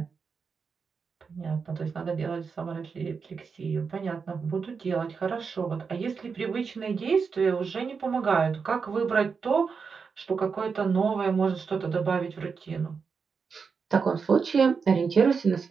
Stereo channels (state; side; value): quieter; left; 5.5 dB